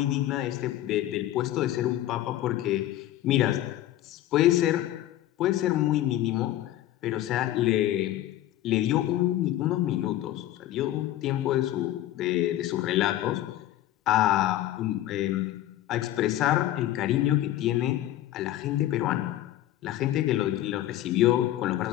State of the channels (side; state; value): right; quieter; 13.9 dB